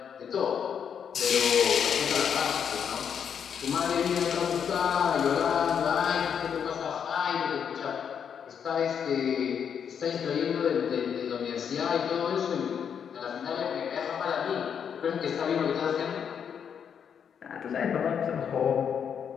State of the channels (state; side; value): quieter; right; 7.7 dB